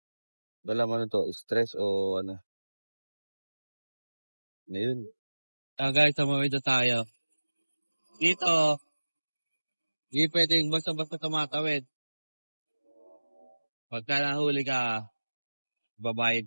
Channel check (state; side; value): inverted; both; correlation -1.00